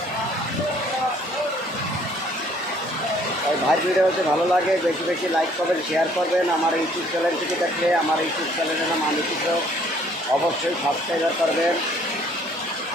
তাই ভাই ভিডিও হচ্ছে ভালো লাগে, বেশি বেশি লাইক করবেন, শেয়ার করবেন। আমার ইউটিউব চ্যানেল থেকে দেখলে আমার ইউটিউব চ্যানেলের নাম আমি কৃষক, অবশ্যই সাবস্ক্রাইব করবেন।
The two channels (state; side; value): normal; both; correlation 0.61